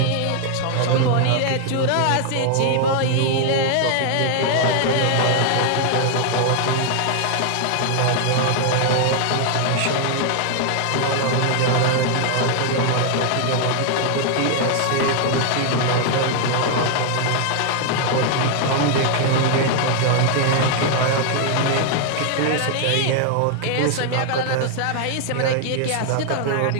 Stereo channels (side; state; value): both; different; correlation 0.00